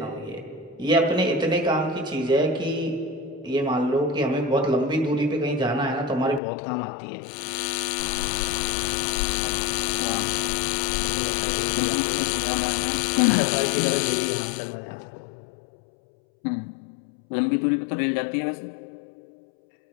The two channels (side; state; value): right; drops out; at 6.4 s